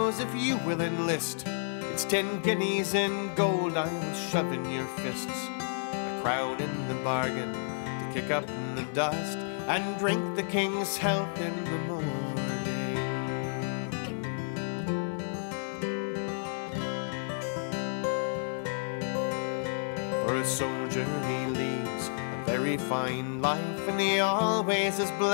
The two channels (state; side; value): silent; right; 57 dB below the other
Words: if you will enlist, it's 10 guineas in gold I will shove in your fists, a crown in the bargain to kick up in the dust and drink the king's health in the morning. For a soldier he leads a very fine life, and he always is